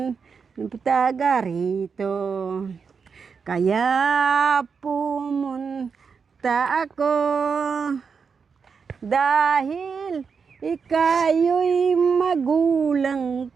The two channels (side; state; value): left; quieter; 5.8 dB